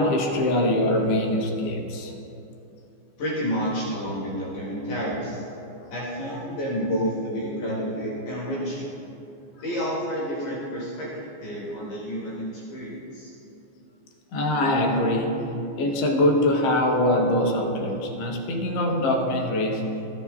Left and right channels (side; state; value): right; late; 15 ms